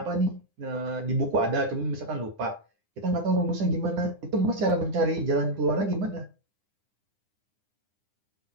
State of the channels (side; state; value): left; late; 9.8 ms